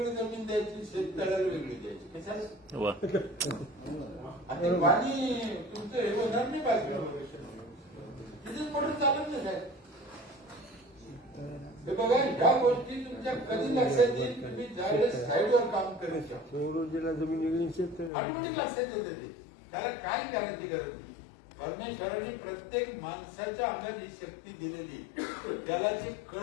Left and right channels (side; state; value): right; drops out; at 18.1 s